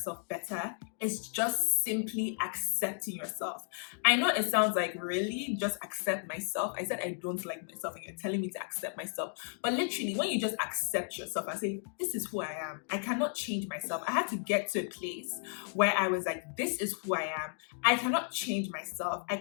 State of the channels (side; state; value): right; silent; 55 dB below the other